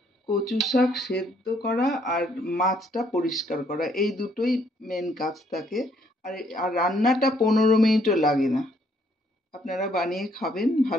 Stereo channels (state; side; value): normal; both; correlation 0.68